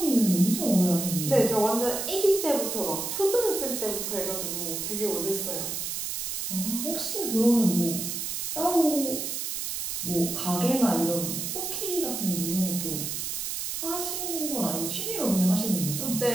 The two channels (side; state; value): right; noise; hiss, 3 dB below the sound